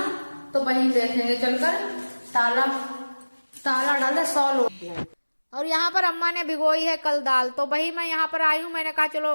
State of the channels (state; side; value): inverted; both; correlation -1.00